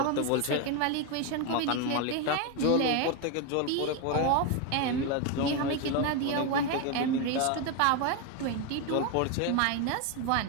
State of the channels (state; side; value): different; both; correlation 0.02